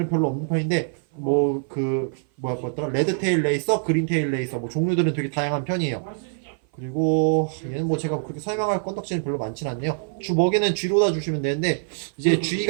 별로 없는 편인데, 뭐였더라? 레드테일 레이서, 그린테일 레이서, 뭐 종류들은 되게 다양한 편이에요. 그리고 얘는 뭐 제가 그렇게 설명할 건덕지는 별로 많진 않네요. 주 먹이는 쥐로다 주시면 되는데, 이제 쥐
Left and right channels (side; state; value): left; silent; 56 dB below the other